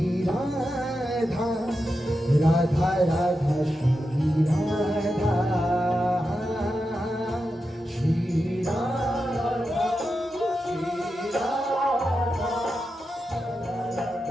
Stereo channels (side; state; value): both; normal; correlation 0.89